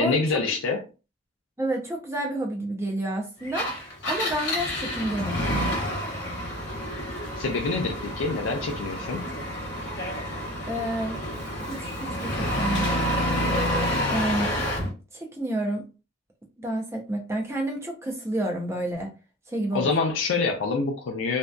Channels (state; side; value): normal; both; correlation 0.37